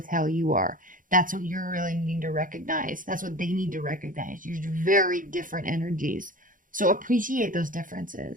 how you are. That's what you're really needing to recognize. That's what they need to recognize. You're very different energies. So appreciate those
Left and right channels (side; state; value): left; late; 0.39 ms